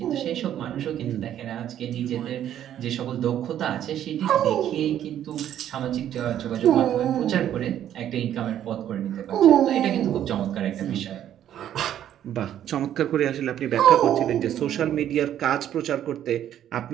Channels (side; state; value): left; quieter; 10.9 dB